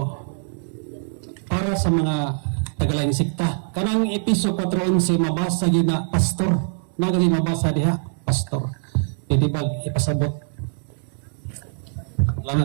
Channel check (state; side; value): silent; left; digital silence